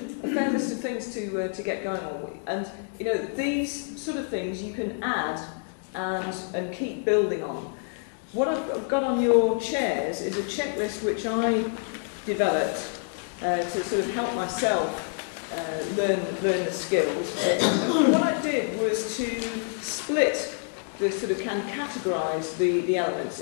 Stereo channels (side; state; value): right; silent; 56 dB below the other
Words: fair list of things to get going on with. And, you know, these sort of things you can add and keep building on. What I've got on your chairs is a checklist which I developed to sort of help myself learn the skills. And what I did was to split categorise the elements